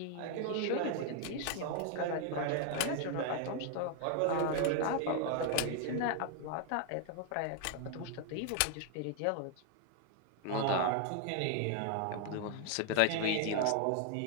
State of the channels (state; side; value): different; both; correlation 0.00